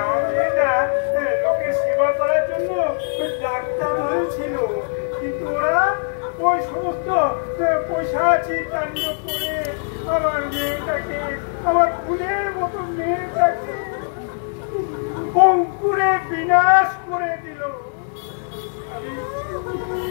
মেয়েটা লোকের সেবা করার জন্য ডাক্তার হয়েছিল, কিন্তু ওরা ওই সমস্ত পৈশাচিক কাণ্ড করে আমার মেয়েটাকে, আমার ফুলের মতো মেয়েটাকে অঙ্কুরে বিনাশ করে দিল।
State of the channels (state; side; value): silent; right; digital silence